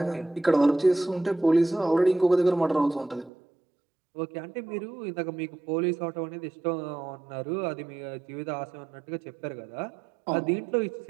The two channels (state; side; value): drops out; left; at 3.3 s